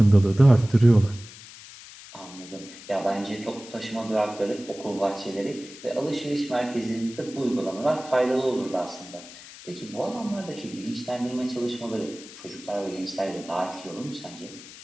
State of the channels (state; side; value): noise; left; hiss, 17 dB below the sound